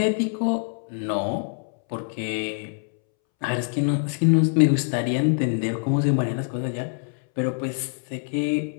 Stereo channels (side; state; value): right; silent; 62 dB below the other